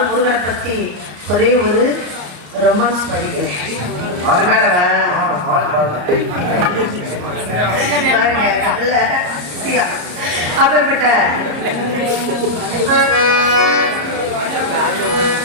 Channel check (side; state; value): left; late; 34 ms